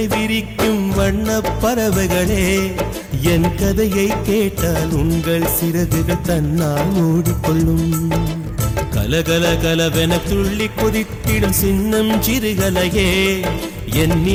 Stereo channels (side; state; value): both; identical; correlation 1.00